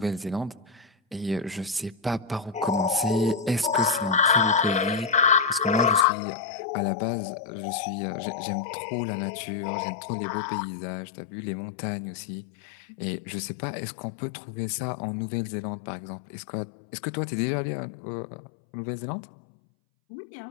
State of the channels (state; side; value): drops out; right; at 6.1 s